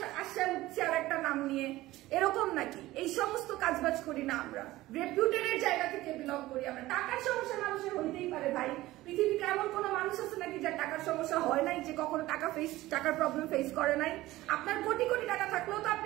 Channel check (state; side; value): quieter; left; 17.3 dB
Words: আসে উঠছে আর একটা নাম নিয়ে, এরকম নাকি? এই সমস্ত কাজবাজ করি না আমরা, রেপুটেডের জায়গা থেকে বিলং করি আমরা। টাকার সমস্যা মানুষের হইতেই পারে ভাই, পৃথিবীতে এমন কোন মানুষ আছে নাকি যার টাকার সমস্যা হয় নাই, যে কখনো টাকার প্রবলেম ফেস করে নাই? আপনার কোটি কোটি টাকা থাকলেও তো